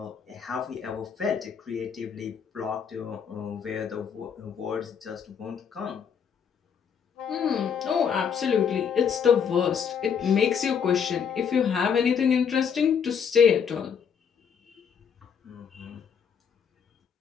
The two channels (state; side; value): quieter; right; 7.1 dB